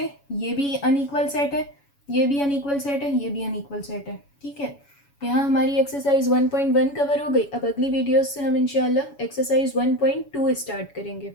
ये भी अनइक्वल सेट है, ये भी अनइक्वल सेट है, ये भी अनइक्वल सेट है, ठीक है। यहाँ हमारी एक्सरसाइज 1.1 कवर हो गई। अब अगली वीडियोस से हम इंशाल्लाह एक्सरसाइज 1.2 स्टार्ट करेंगे।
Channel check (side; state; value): right; late; 7.1 ms